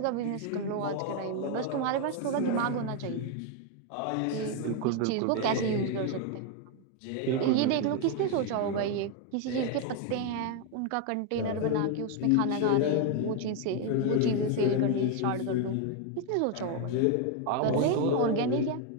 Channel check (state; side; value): different; both; correlation 0.01